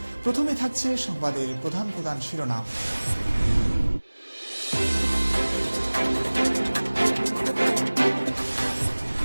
প্রথমে থাকছে সংবাদের প্রধান প্রধান শিরোনাম।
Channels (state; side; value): inverted; both; correlation -1.00